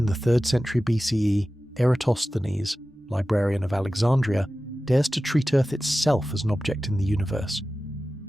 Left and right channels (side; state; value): both; normal; correlation 0.95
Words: the 3rd century BCE, Eratosthenes, librarian of Alexandria, dares to treat Earth itself as an object in the universe,